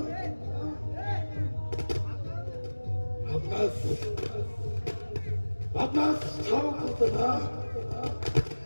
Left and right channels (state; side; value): inverted; both; correlation -1.00